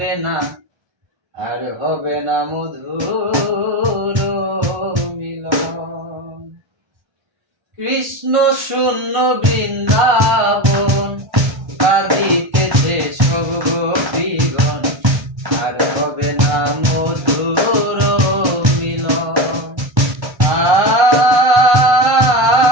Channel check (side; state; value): left; late; 1.3 ms